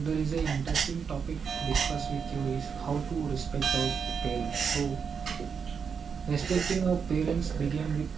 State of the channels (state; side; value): quieter; left; 6.3 dB